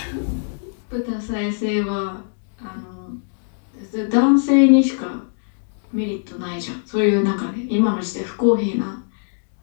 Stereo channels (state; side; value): silent; right; digital silence